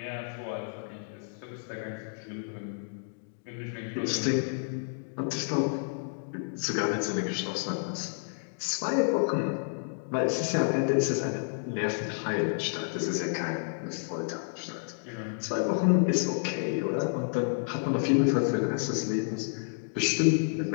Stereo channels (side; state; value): right; silent; digital silence